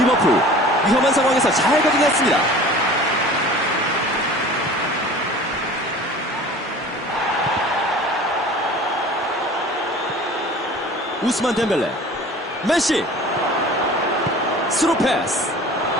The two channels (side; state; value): both; normal; correlation 0.43